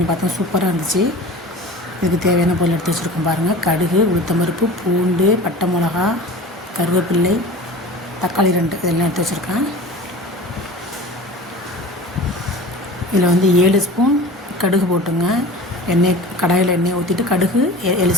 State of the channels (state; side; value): normal; both; correlation 0.37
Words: பார்த்தேன், சூப்பராக இருந்துச்சு. இதுக்கு தேவையான பொருள் எடுத்து வச்சுருக்கோம் பாருங்கள். கடுகு, உளுத்தம்பருப்பு, பூண்டு, பட்டை மிளகா, கருவேப்பிள்ளை, தக்காளி 2 இதெல்லாம் எடுத்து வச்சுருக்கேன். இதில் வந்து 7 ஸ்பூன் கடுகு போட்டுங்க. கடாயில் எண்ணெய் ஊற்றிட்டு கடுகு 7